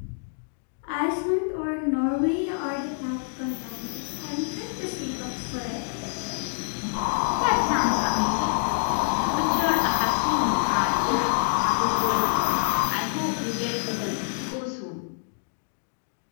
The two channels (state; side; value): silent; right; 61 dB below the other